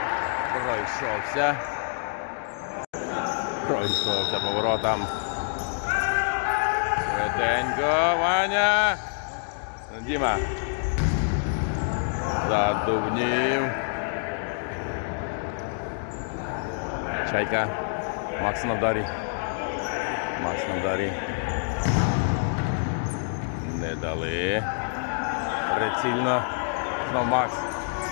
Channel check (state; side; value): silent; right; digital silence